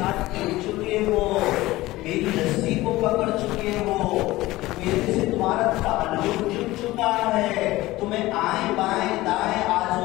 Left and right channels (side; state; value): right; quieter; 18.1 dB